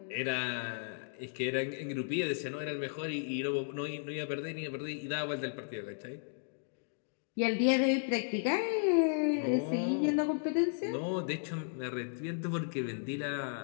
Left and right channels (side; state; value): right; silent; digital silence